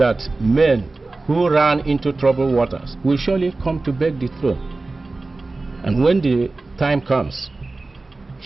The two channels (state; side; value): quieter; left; 3.4 dB